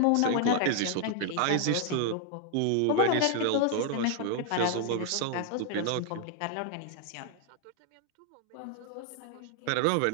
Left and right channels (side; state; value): both; different; correlation 0.00